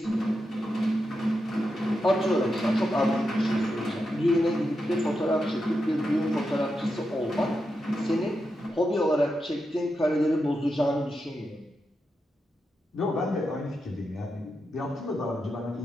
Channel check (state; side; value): normal; both; correlation 0.87